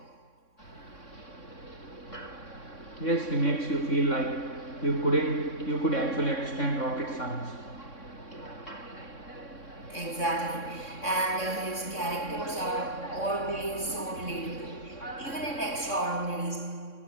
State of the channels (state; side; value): late; right; 3.6 ms